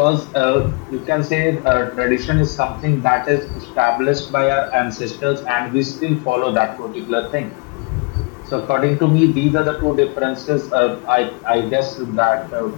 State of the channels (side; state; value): right; quieter; 30.3 dB